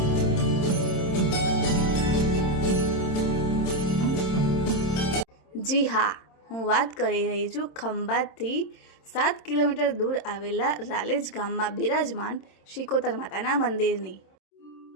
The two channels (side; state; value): right; late; 26 ms